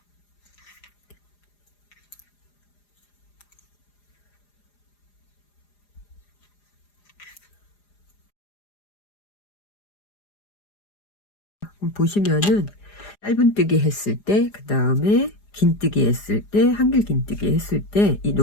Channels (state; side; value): late; right; 4.9 ms